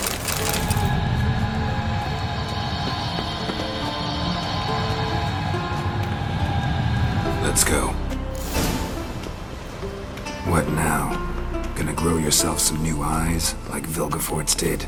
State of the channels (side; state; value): both; identical; correlation 1.00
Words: Let's go. What now? Gonna grow yourself some new eyes, like Vilgefortz did?